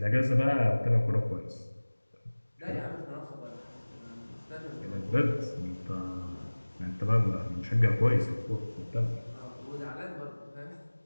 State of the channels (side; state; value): both; inverted; correlation -1.00